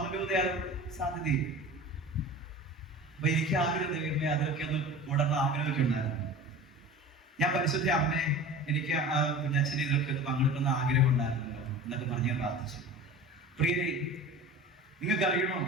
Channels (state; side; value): normal; both; correlation 0.36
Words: രൂപതയാണ് സാധ്യതയും. അപ്പൊ എനിക്ക് ആഗ്രഹം ദൈവമേ അതൊക്കെ ഒന്ന് കൂടണം ആഗ്രഹമൊക്കെ ഉണ്ടായിരുന്നു. ഞാൻ പരിശുദ്ധ അമ്മേ, എനിക്ക് കുഞ്ഞച്ഛനെ ഇതൊക്കെ ഒന്ന് പങ്കെടുക്കുന്ന ആഗ്രഹം ഉണ്ടായിരുന്നല്ലോ എന്നൊക്കെ പറഞ്ഞ് ഞാൻ പ്രാർത്ഥിച്ചു. പ്രിയരെ, നിങ്ങൾക്ക് അറിയണോ,